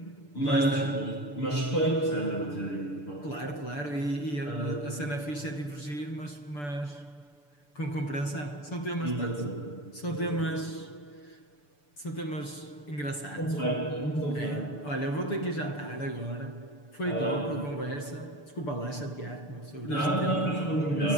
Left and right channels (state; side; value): late; right; 6.8 ms